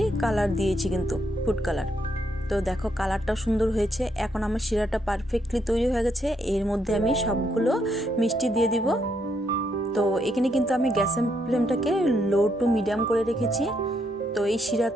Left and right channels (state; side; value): normal; both; correlation 0.76